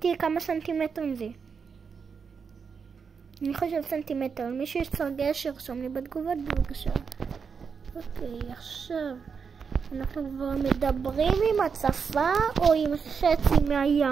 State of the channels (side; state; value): left; quieter; 5.9 dB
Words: כמה סנטימטרים זה? אני חושב סנטימטר. מישהו יש סרגל שרשום לי בתגובות בבקשה. אוקיי, עכשיו אנחנו כבר מדברים עם הצפה או עם חצי